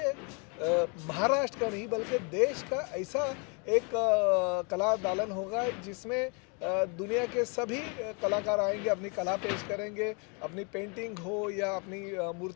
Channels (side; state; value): right; quieter; 34.5 dB